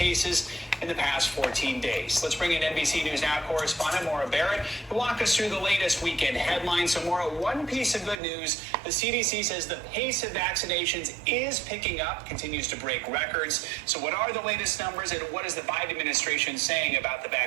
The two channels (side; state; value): left; drops out; at 8.2 s